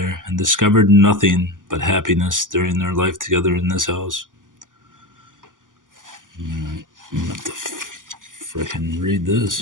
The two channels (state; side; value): late; left; 0.88 ms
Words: and discovered nothing but happiness during their life together in this house. I'm going to have to frickin' read